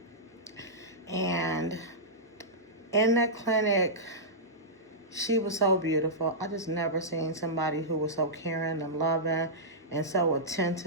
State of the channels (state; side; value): normal; both; correlation -0.14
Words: And in that clinic, she was so beautiful. I just never seen somebody who was so caring and loving and so